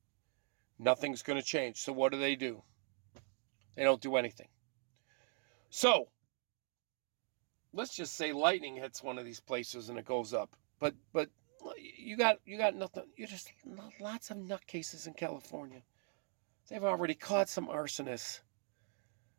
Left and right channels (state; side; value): silent; left; 50 dB below the other